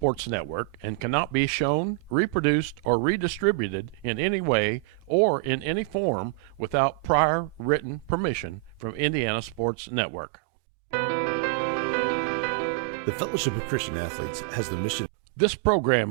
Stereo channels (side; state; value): left; drops out; at 9.7 s